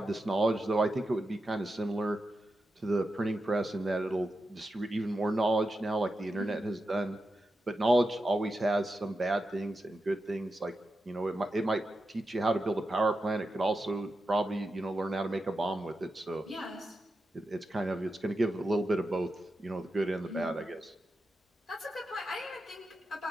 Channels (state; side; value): normal; both; correlation 0.89